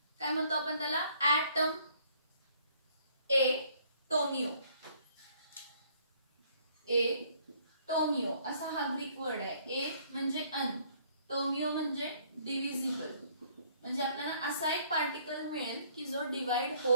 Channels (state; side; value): inverted; both; correlation -0.62